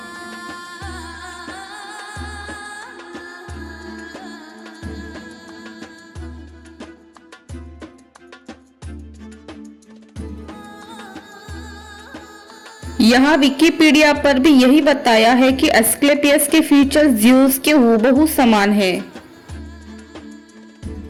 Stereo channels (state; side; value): identical; both; correlation 1.00